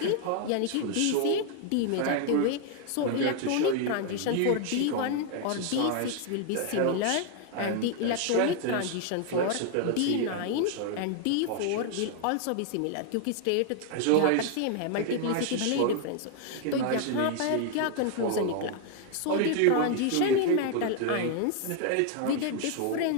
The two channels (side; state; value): both; different; correlation 0.00